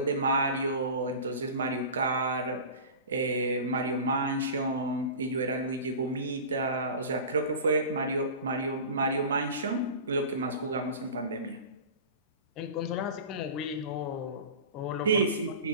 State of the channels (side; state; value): both; inverted; correlation -0.34